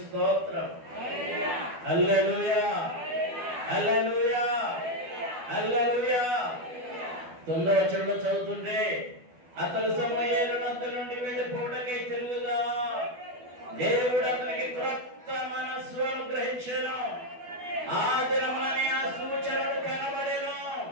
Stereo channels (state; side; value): late; left; 12 ms